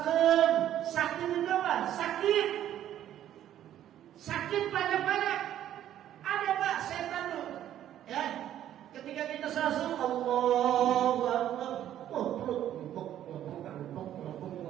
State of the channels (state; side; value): quieter; left; 11.5 dB